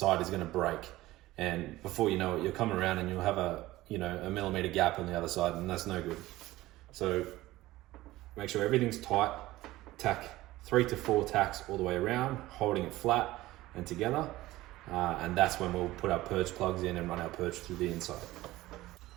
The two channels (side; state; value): left; quieter; 17.3 dB